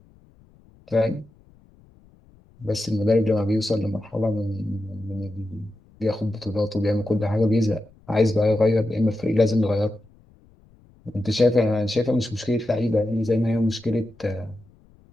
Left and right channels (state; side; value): noise; left; rumble, 29 dB below the sound